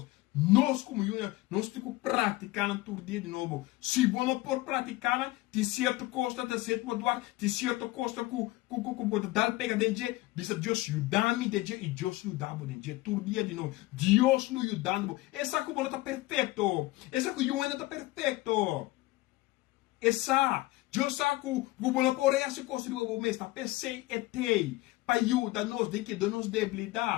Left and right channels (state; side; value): quieter; right; 19.3 dB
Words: Nós como una, nós temos que praticar tudo dia de novo. Se você não pode praticar, tem certa coisa, tem certo moduar, tem certa coisa que pode dar pega dentro. Diz Deus ajuda-me dentro e Deus ajuda-me dentro. Tudo dia de novo. Deus nos ajudando. Essa que não está perfeito. Essa que eu ainda está perfeito. Essa. Deus sabe que você não pode fazer coisa de você mesmo. Pensei e tem. Para ajudar-nos de que nos